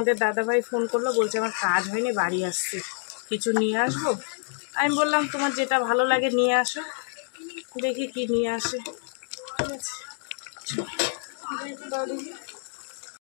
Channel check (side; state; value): right; silent; 60 dB below the other